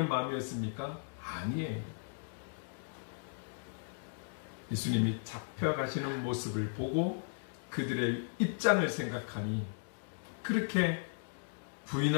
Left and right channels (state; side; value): silent; right; digital silence